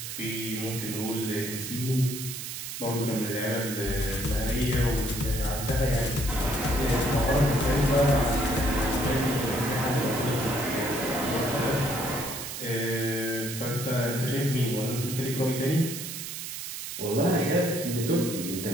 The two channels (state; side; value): noise; right; hiss, 7 dB below the sound